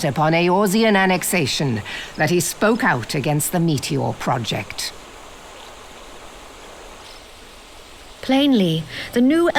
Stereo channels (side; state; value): both; identical; correlation 1.00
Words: upon Eorzean annexation that he spoke out against the Meteor Project. Plainly, the new